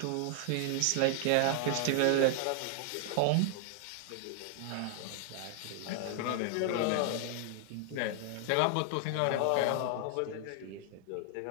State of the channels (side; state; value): both; different; correlation 0.00